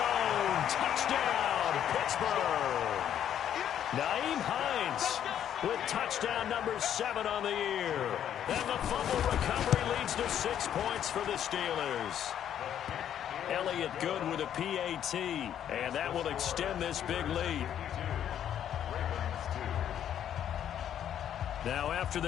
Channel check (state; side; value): quieter; right; 10.0 dB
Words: Touchdown, Pittsburgh. Nyheim Hines with touchdown number 7 on the year. And the fumble recovery leads to 6 points for the Steelers. Elliott Good with a PAT, and that will extend this big lead. Now after